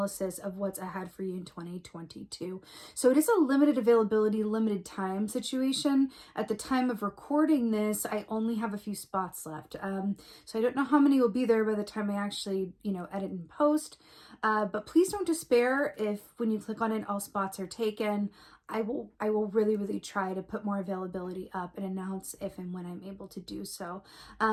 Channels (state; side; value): identical; both; correlation 1.00